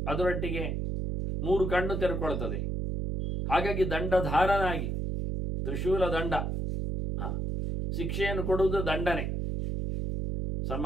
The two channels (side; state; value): right; noise; hum, 1 dB below the sound